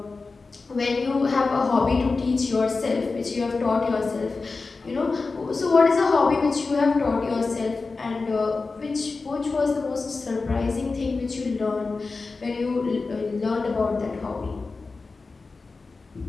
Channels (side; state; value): right; quieter; 4.0 dB